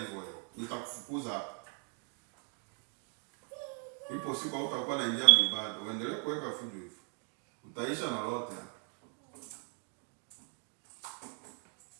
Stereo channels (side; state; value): left; quieter; 38.2 dB